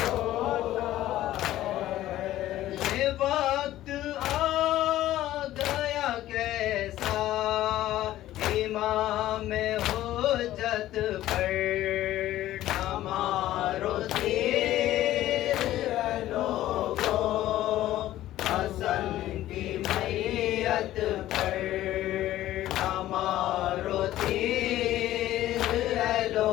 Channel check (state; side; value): quieter; right; 14.2 dB